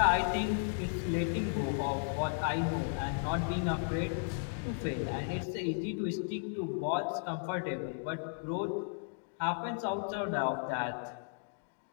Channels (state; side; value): silent; right; digital silence